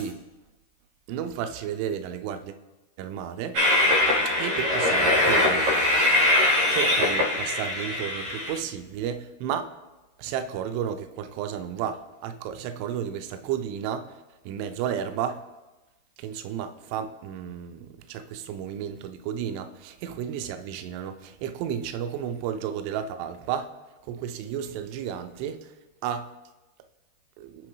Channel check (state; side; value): late; left; 13 ms